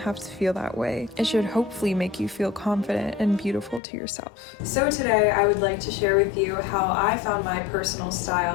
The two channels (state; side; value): drops out; right; at 3.8 s